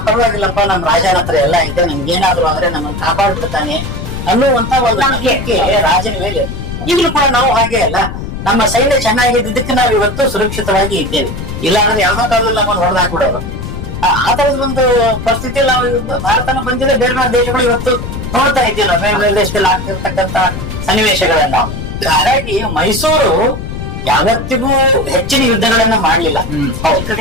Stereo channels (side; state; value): left; noise; rumble, 7 dB below the sound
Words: ಪರವಾಗಿಲ್ಲಪ್ಪ, ನಮ್ ರಾಜನ ಹತ್ರ ಎಲ್ಲ ಇದೆ, ನಮ್ಗೆ ಏನಾದ್ರು ಅಂದ್ರೆ ನಮ್ಮನ್ನ ಕಾಪಾಡ್ಬಿಡ್ತಾನೆ ಅನ್ನುವಂತ ಒಂದು ನಂಬಿಕೆ ರಾಜನ ಮೇಲೆ. ಈಗಲೂ ಕೂಡ ನಾವು ಹಾಗೆ ಅಲ್ಲ, ನಮ್ಮ ಸೈನ್ಯ ಚೆನ್ನಾಗಿದ್ದಕ್ಕೆ ನಾವು ಇವತ್ತು ಸುರಕ್ಷಿತವಾಗಿ ಇದ್ದೇವೆ. ಇಲ್ಲ ಅಂದ್ರೆ ಯಾವ್ದೋ ಕಾಲದಲ್ಲಿ ನಮ್ಮನ್ನು ಹೊಡೆದಾಕ್ಬಿಡೋರು. ಆ ತರದ ಒಂದು ಪರಿಸ್ಥಿತಿಯಲ್ಲಿ ನಾವು ಭಾರತನ ಬಂದಿಲ್ಲ, ಬೇರೆ ಬೇರೆ ದೇಶಗಳು ಇವತ್ತು ನೋಡ್ತಾ ಇದ್ದೀವಿ, ಬೇರೆ ಬೇರೆ ದೇಶದಲ್ಲಿ ಆಗ್ತಿರ್ತಕ್ಕಂತ ಸನ್ನಿವೇಶಗಳನ್ನ. ಹಾಗಾಗಿ ಮೈಸೂರು ಯಾವತ್ತಿಗೂ ಹೆಚ್ಚಿನ ಯುದ್ಧಗಳನ್ನ ಮಾಡ್ಲಿಲ್ಲ.